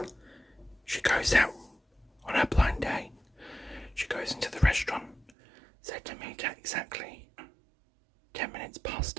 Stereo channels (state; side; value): drops out; left; at 5.3 s